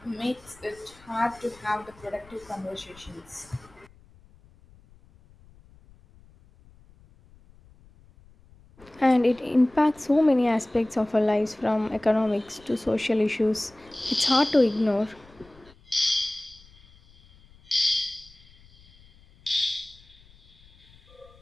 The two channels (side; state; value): left; noise; rumble, 27 dB below the sound